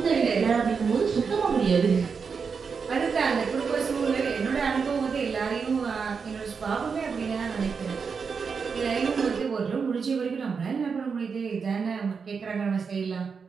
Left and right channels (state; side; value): quieter; left; 5.6 dB